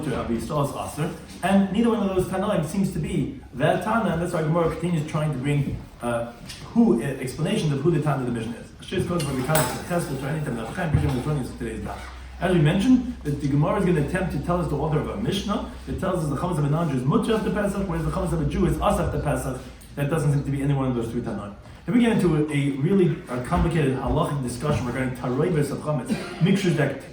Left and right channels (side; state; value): both; identical; correlation 1.00